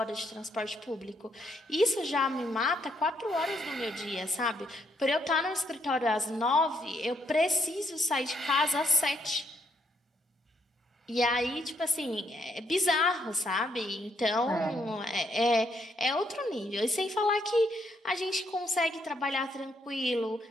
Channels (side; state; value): both; normal; correlation 0.74